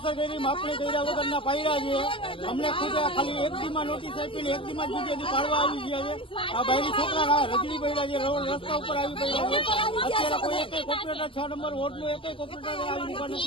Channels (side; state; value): right; late; 0.25 ms